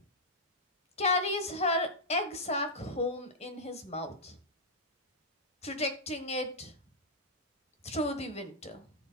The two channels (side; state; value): both; normal; correlation -0.08